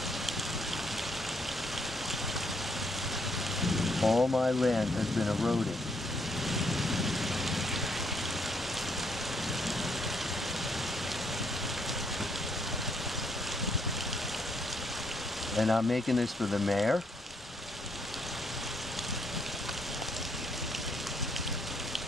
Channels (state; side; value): normal; both; correlation 0.72